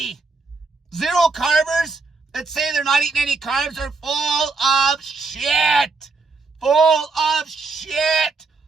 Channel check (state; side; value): quieter; left; 4.1 dB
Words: Zero carbers that say they're not eating any carbs are full of shit.